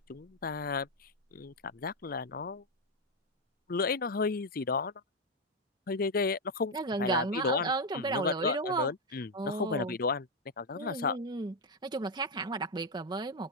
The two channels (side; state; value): both; normal; correlation 0.04